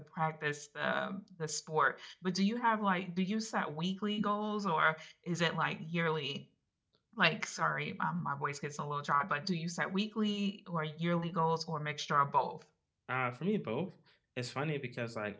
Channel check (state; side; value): identical; both; correlation 1.00